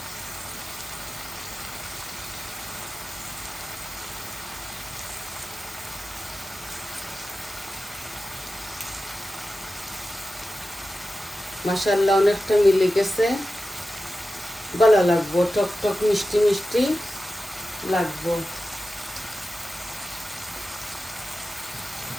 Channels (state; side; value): normal; both; correlation 0.93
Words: মাশাআল্লাহ অনেকটা মিলে গেছে, ভালো লাগবো, টক টক মিষ্টি মিষ্টি লাগবো।